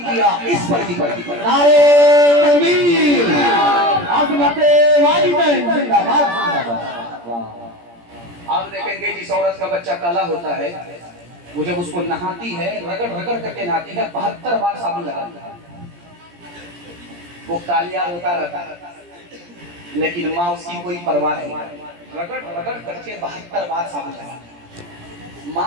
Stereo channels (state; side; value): late; left; 17 ms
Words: किया, इस पर भी करम किया। नारे तकबीर, आज़मते वालिदैन जिंदाबाद जिंदाबाद। आप देखेंगे जिस औरत का बच्चा काला होता है, वो जब उसको नहाती है, रगड़ रगड़ करके नहाती है, 72 बार साबुन लगाती है। وہ कालिया रोता रहता है, लेकिन माँ उसकी कोई परवाह नहीं, रगड़ रगड़ करके 72 बार साबुन लगाती।